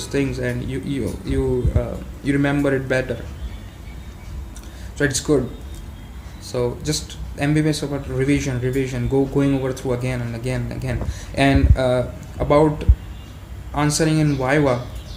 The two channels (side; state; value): both; identical; correlation 1.00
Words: things, and you remember it better. So it's good. So just MBBS about revision, going over through again and again and again. And about answering in Viva,